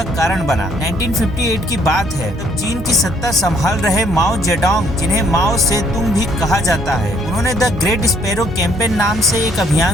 कारण बना। 1958 की बात है, तब चीन की सत्ता संभाल रहे माओ जेडोंग, जिन्हें माओ सेतुंग भी कहा जाता है, उन्होंने द ग्रेट स्पैरो कैंपेन नाम से एक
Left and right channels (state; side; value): normal; both; correlation 0.65